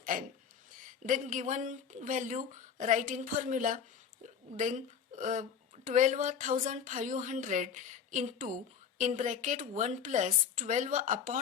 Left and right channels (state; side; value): quieter; right; 7.3 dB